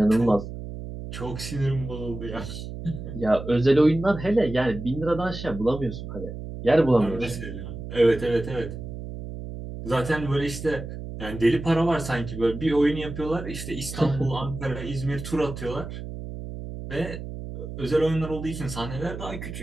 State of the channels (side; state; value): right; noise; hum, 9 dB below the sound